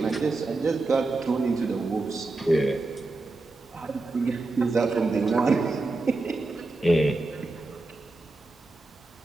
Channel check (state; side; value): quieter; left; 3.2 dB